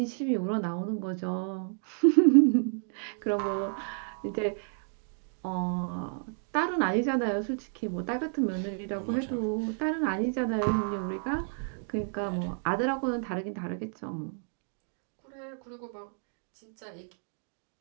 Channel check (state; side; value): silent; left; 56 dB below the other